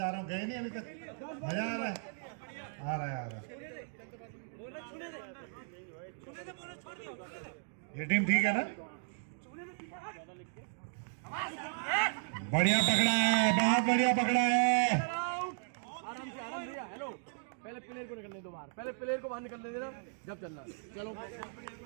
रहा हूँ गए नहीं अभी तक। मजा आ रहा है, आ रहा है, आ रहा है। ये टीम ठीक है ना? बढ़िया पकड़ा है, बहुत बढ़िया पकड़ा है। आराम से भैया हेलो पहले प्लेयर को निकलने दो बाहर पहले प्लेयर को बाहर निकलने देना जब चलना चलो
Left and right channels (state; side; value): silent; left; digital silence